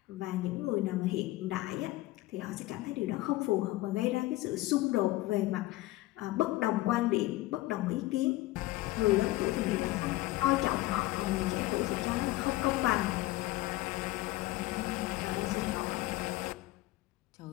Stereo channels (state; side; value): quieter; right; 18.0 dB